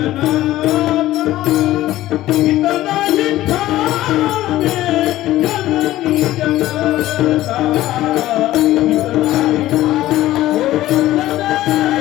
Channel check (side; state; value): right; quieter; 15.3 dB